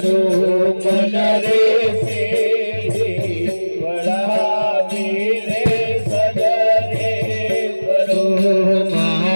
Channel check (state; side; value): inverted; both; correlation -1.00